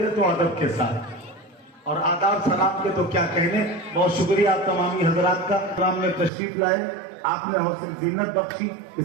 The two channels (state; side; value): drops out; left; at 6.3 s